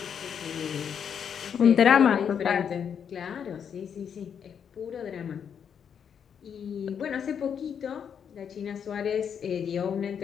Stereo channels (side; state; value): right; quieter; 7.7 dB